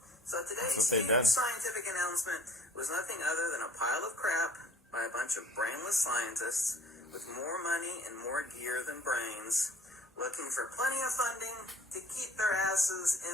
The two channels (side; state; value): both; normal; correlation 0.53